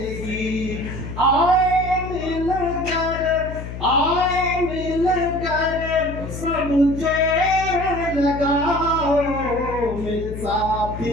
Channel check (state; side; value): noise; left; hum, 9 dB below the sound